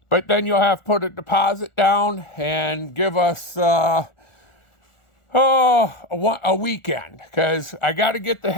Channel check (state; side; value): late; right; 1.4 ms